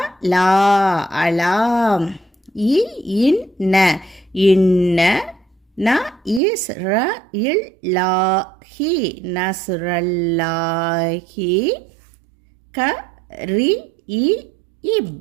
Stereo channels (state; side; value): drops out; left; at 6.4 s